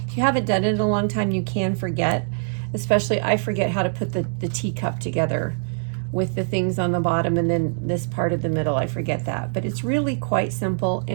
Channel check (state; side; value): silent; left; digital silence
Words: If you haven't done it in a long time, you can forget. Especially, I forget how to put the teacup together with the things on the bottom and then this part of the middle. I forget that. But it's really quite simple,